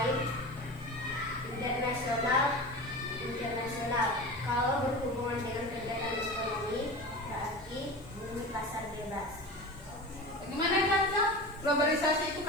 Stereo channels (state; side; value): noise; left; hiss, 28 dB below the sound